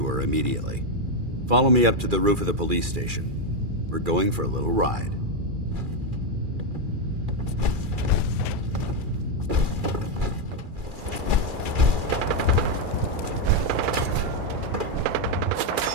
her immediately. Follow me up to the roof of the police station. We're going for a little ride.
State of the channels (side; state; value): left; late; 2.4 ms